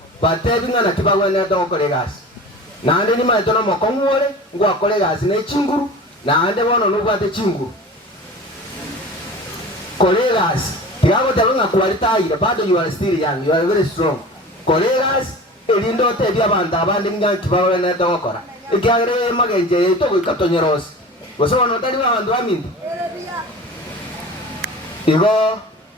batebinga na kibagwene dokore gasi nande ni maito no mokongwore ngwakore gasi ne chinguru nande bono nubwate chinguru colegas tiago tabunga kwalitaire bado you are still young, you are very strong colegas elindo tebi abanda abandi nga kibagwene dokora ikiagere magenje to gikatonyeros goso no tali abantu bamindi igo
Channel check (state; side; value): normal; both; correlation 0.37